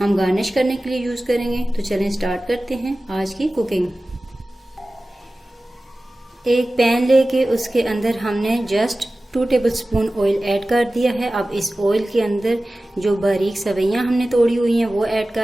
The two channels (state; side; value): normal; both; correlation 0.96